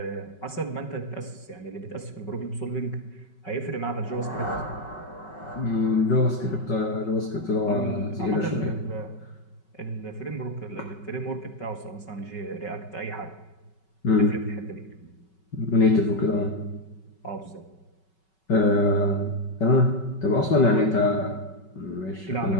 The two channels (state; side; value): late; right; 5.3 ms